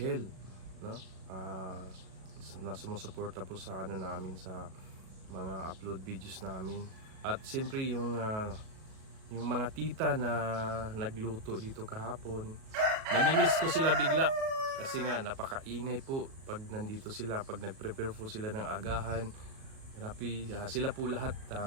no? Na sumusuporta po sa namin sa mga upload videos namin. At siyempre yung mga tita na nagluto dito kahapon, namimiss ko sila bigla kasi nga napakaingay po pag nandito sila, pag nagprepare po sila ng agahan. Grabe, sila po lahat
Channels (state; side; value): late; left; 37 ms